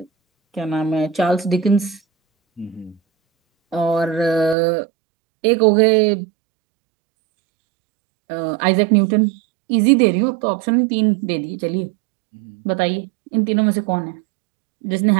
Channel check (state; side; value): drops out; left; at 4.5 s